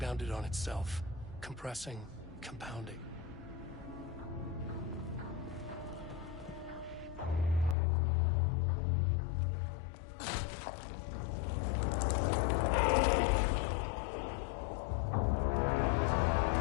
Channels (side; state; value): right; drops out; at 7.8 s